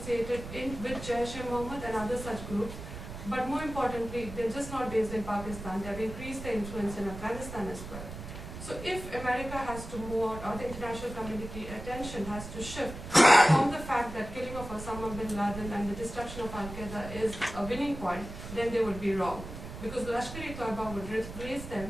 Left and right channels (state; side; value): noise; right; rumble, 10 dB below the sound